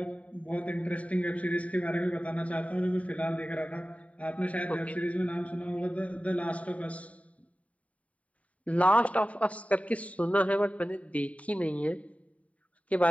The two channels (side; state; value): right; late; 0.067 ms